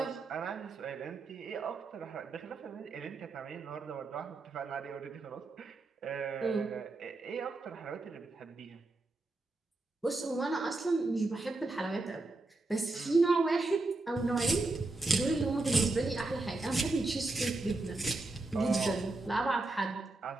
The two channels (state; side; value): quieter; left; 3.1 dB